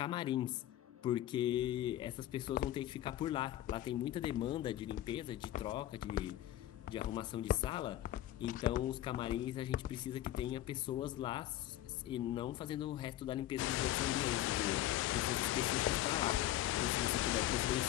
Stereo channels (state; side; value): quieter; right; 13.5 dB